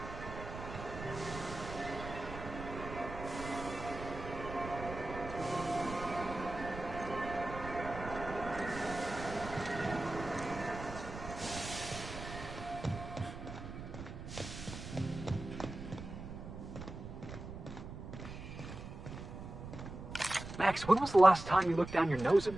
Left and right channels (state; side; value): noise; right; rumble, 10 dB below the sound